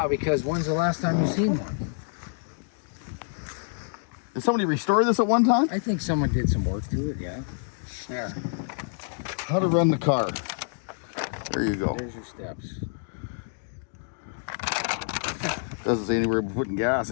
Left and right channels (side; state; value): right; silent; digital silence